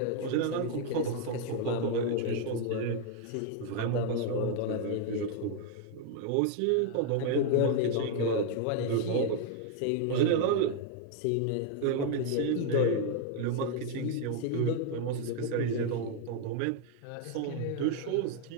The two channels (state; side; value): different; both; correlation 0.01